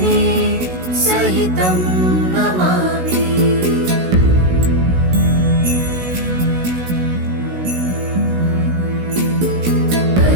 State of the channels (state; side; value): late; left; 16 ms